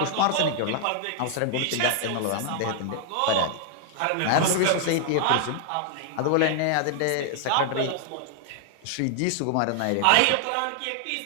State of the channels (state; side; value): different; both; correlation 0.00